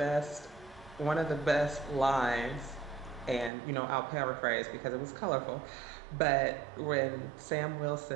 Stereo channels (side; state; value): left; drops out; at 3.5 s